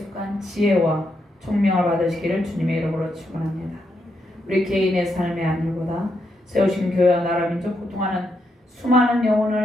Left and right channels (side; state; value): both; normal; correlation 0.81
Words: 지혜와 총명을 받으시기를 주님의 이름으로 축원합니다. 우리 개인의 삶의 안일보다 세우신 교회와 나라 민족 고통하는 수많은